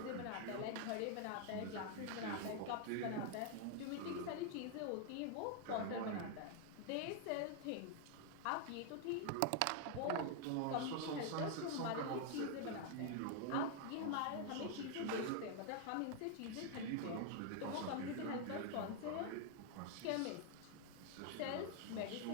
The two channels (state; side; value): different; both; correlation 0.00